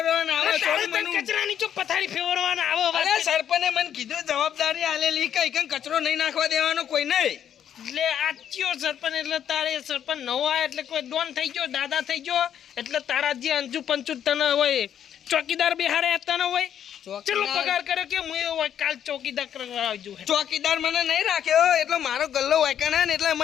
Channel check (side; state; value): right; quieter; 9.5 dB